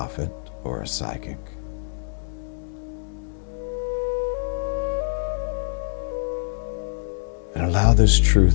or a psychic. And allow this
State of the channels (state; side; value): silent; right; digital silence